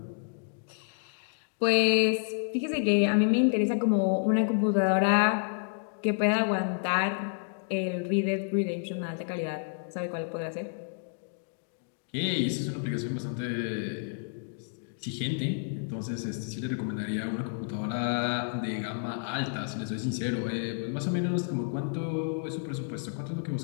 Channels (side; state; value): right; silent; digital silence